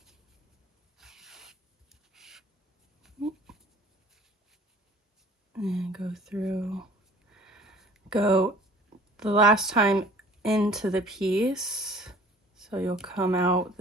And go through, go the last time into the piece. So you'll come out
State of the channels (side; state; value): both; normal; correlation 0.50